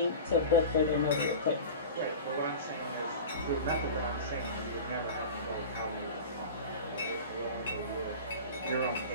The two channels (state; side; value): inverted; both; correlation -0.33